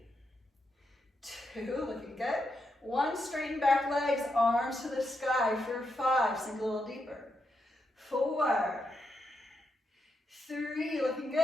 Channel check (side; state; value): both; normal; correlation 0.83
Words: 2. Looking good. 1. Straighten back legs, arms to the sky for 5. Sink a little deeper. 4, 3. Looking